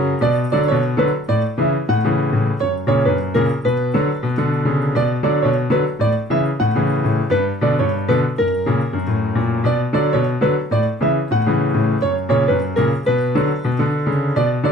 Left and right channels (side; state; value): both; normal; correlation 0.60